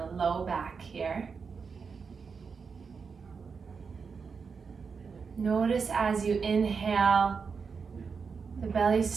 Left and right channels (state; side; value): quieter; left; 5.5 dB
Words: the low back here. Notice as you inhale, the belly